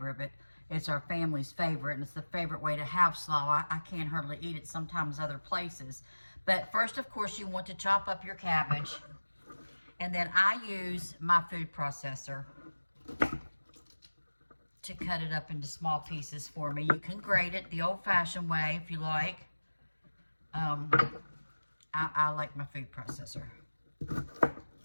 but it's our family's favorite, and it's the favorite way to have slaw. I can't hardly eat it sometimes other places. But first, of course, you want to chop up your cabbage, and then I use my food processor to cut it up into small pieces for me. You can grate it the old-fashioned way if you like. I like my food processor.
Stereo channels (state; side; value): inverted; both; correlation -1.00